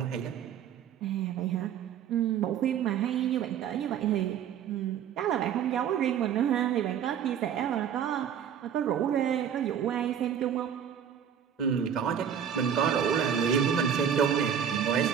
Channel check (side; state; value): left; quieter; 8.5 dB